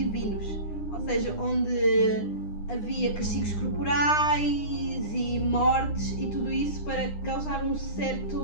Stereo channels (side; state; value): right; late; 9.8 ms